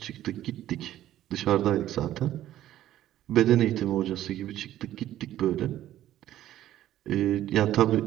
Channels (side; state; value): left; quieter; 13.0 dB